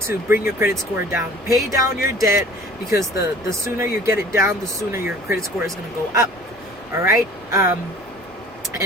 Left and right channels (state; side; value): normal; both; correlation 0.48